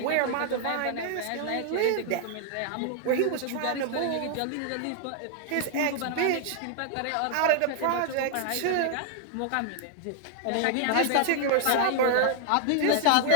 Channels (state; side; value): different; both; correlation 0.00